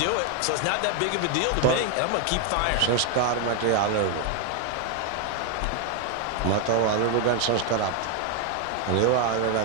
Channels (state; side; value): different; both; correlation 0.01